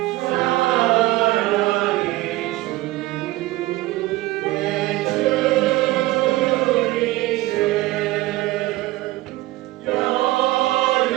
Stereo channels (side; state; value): left; quieter; 18.3 dB